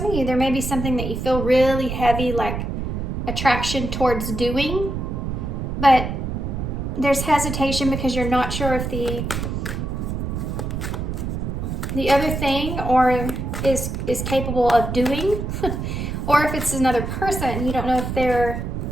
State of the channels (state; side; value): noise; right; rumble, 3 dB below the sound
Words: of you, there may be something that you feel really heavy, like attraction towards doing, but there's hesitation because you're not sure if the other thing is capable of doing, or if it's another person. You don't know if their